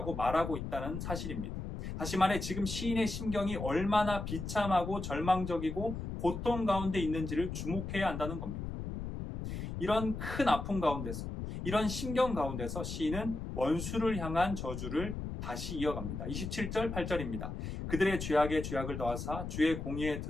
말하고 있다는 사실입니다. 다시 말해 지금 시인의 심경이 얼마나 비참하고 절망적이고 고통 가운데 있는지를 주목해야 한다는 겁니다. 이런 큰 아픔 가운데서, 이런 심경 가운데서 시인은 원수를 향한 저주를 다시 이어갑니다. 27절, 8절입니다. 그들의 죄악에 죄악을 더하사 주의 공의에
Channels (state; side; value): noise; left; rumble, 6 dB below the sound